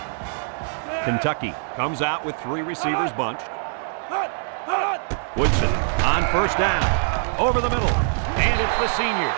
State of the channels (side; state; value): left; silent; digital silence